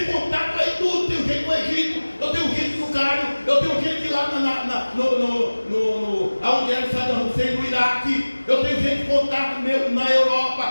contato aí tudo. Tenho gente no Egito, eu tenho gente no Cairo, eu tenho gente lá onde era Saddam Hussein, no Iraque. Eu tenho gente com contato meu na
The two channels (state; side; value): inverted; both; correlation -1.00